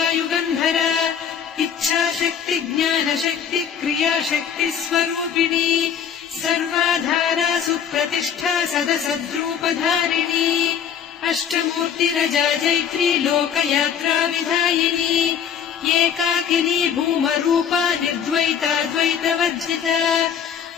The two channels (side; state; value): right; quieter; 8.0 dB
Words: युगन्धरा इच्छाशक्ति ज्ञानशक्ति क्रियाशक्ति स्वरूपिणी सर्वाधारा सुप्रतिष्ठा सदसद्रूपधारिणी अष्टमूर्तिरजा जैत्री लोकयात्रा विधायिनी एकाकिनी भूमरूपा निर्द्वैता द्वैतवर्जिता